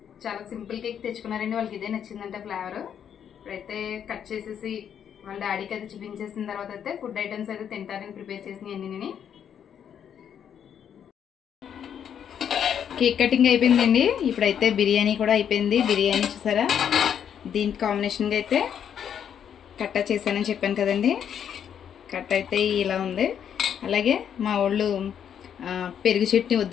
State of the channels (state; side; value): quieter; right; 8.6 dB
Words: చాలా సింపుల్ కేక్ తెచ్చుకున్నారండి. వాళ్ళకి ఇదే నచ్చిందంటే ఫ్లేవర్. ఇప్పుడైతే కట్ చేసేసి వాళ్ళ డాడీకి అయితే చూపించేసిన తర్వాత అయితే ఫుడ్ ఐటమ్స్ అయితే తింటారని ప్రిపేర్ చేసినాయి అన్ని. కేక్ కటింగ్ అయిపోయిందండి. ఇప్పుడైతే బిర్యానీ కూడా అయిపోయింది. బిర్యానీ చూసారా, దీనికి కాంబినేషన్గా అయితే కట్ట చేశానని చెప్పాను కదండి. కట్ట అయితే ఇలా ఉంది. అలాగే మా వాళ్ళు పెరుగు చట్నీ